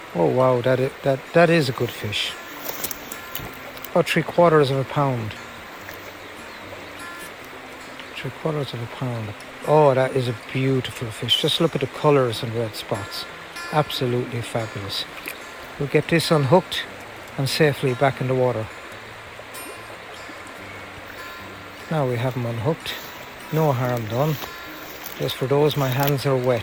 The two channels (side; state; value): both; identical; correlation 1.00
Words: Oh wow, that is a good fish. About 3/4 of a pound. 3/4 of a pound. Oh, that is a beautiful fish. Just look at the colours and red spots. Absolutely fabulous. We'll get this unhooked and safely back in the water. Now we have him unhooked. No harm done. Just for those, my hands are